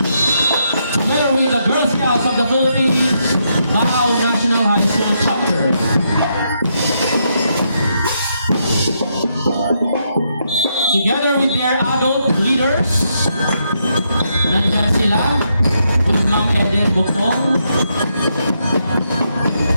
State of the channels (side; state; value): both; inverted; correlation -0.79